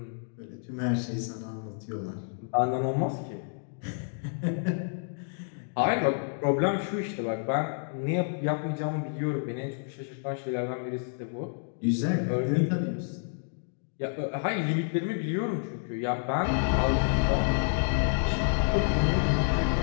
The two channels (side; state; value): right; silent; digital silence